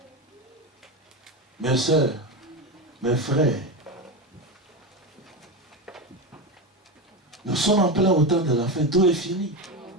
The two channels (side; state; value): both; normal; correlation 0.17